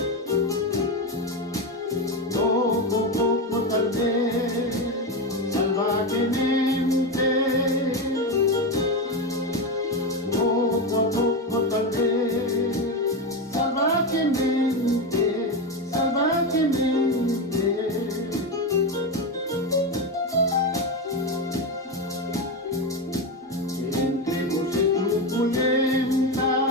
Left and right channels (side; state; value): both; normal; correlation 0.14